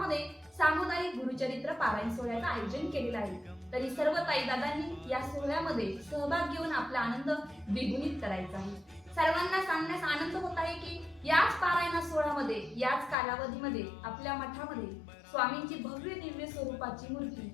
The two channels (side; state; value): right; drops out; at 13.2 s